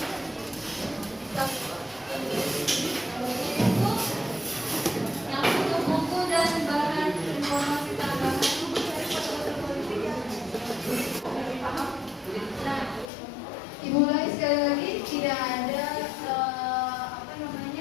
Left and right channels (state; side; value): drops out; right; at 13.1 s